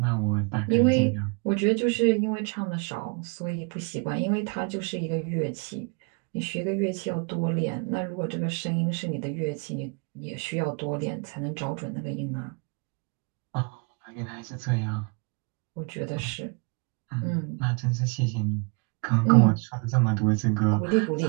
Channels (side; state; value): left; quieter; 32.5 dB